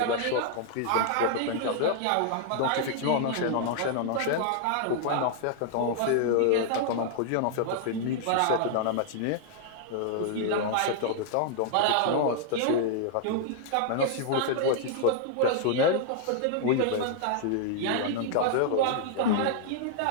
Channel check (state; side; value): different; both; correlation -0.01